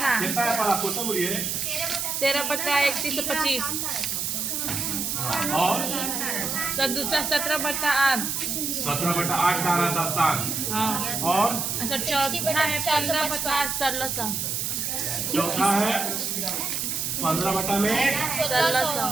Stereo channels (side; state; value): right; noise; hiss, 1 dB below the sound